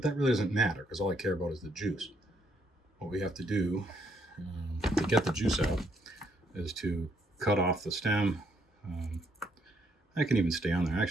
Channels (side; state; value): both; normal; correlation 0.72